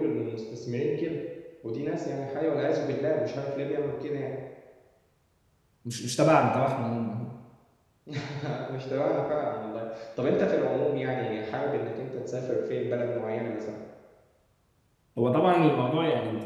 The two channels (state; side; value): identical; both; correlation 1.00